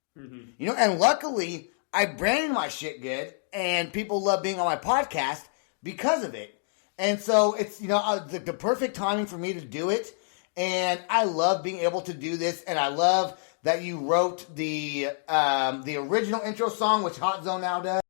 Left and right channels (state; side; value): silent; right; digital silence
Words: Mm-hmm. And luckily, I branded my shit good, and people love being on my podcast because of it. And so it's, the perfect timing for me to do it. And I love being able to do this. And I love that you wrote the original intro song, which Hot Zone now does.